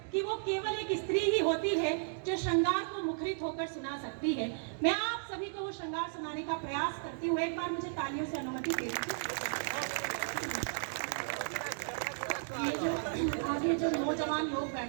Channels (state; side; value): silent; left; digital silence